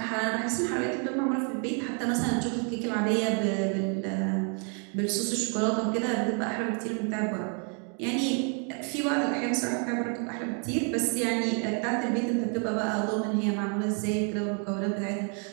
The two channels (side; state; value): left; quieter; 39.6 dB